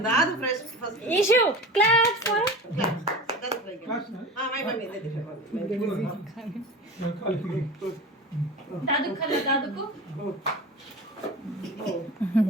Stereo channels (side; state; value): both; normal; correlation 0.33